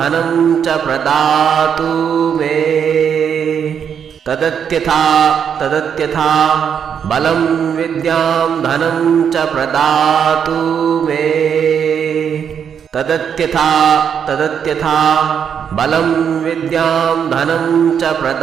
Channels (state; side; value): quieter; left; 7.8 dB